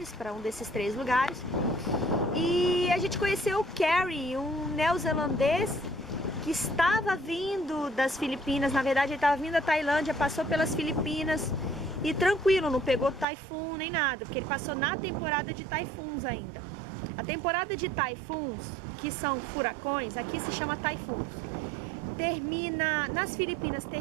para um desses 3 lugares. E a gente conheceu o Kerry, um neozelandês que estava vindo das Filipinas. Na verdade, ele estava vindo da Tailândia, passou pelas Filipinas e tranquilo, não pegou taifun nem nada, porque ele passou na temporada de taifuns ainda. A temporada de taifuns, que são furacões, aqui se chama taifuns, termina, nas Filipinas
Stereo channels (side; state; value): left; drops out; at 13.2 s